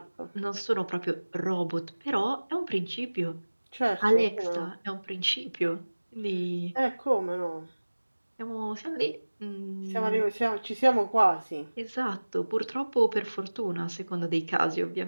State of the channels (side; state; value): both; inverted; correlation -1.00